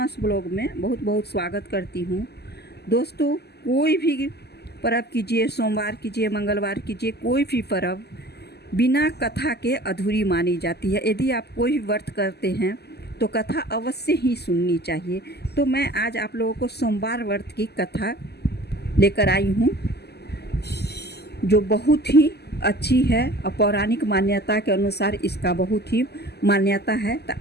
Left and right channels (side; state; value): right; late; 0.47 ms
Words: ब्लॉग में बहुत बहुत स्वागत करती हूँ। दोस्तों, कोई भी पर्व कीजिए, सोमवार कीजिए, मंगलवार कीजिए, कोई भी पर्व बिना कथा के अधूरी मानी जाती है। यदि आप कोई भी व्रत करते हैं तो कथा अवश्य ही सुननी चाहिए। तो मैं आज आप लोगों को सोमवार व्रत की कथा लेकर आई हूँ, जो बहुत ही अच्छी है और पौराणिक मान्यता के अनुसार इसका बहुत ही मान्यता है। तो